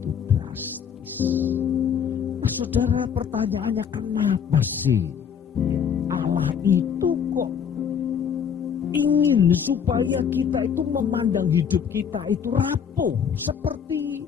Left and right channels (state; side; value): quieter; right; 7.6 dB